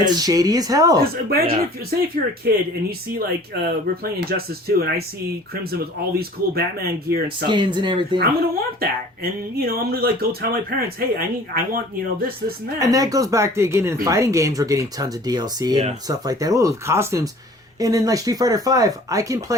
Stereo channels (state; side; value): normal; both; correlation 0.48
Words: It's shady as hell. Because imagine if you're a kid and you see, like, we're playing Injustice 2, and I see Crimson with all these cool Batman gear and stuff. Skins and everything. I'm going to want that. And, you know, I'm going to, like, go tell my parents, hey, I want, you know, this, and that. And that goes back to, again, in fighting games, we're getting tons of DLC and stuff like that. Oh, costumes. And in, like, Street Fighter V, I can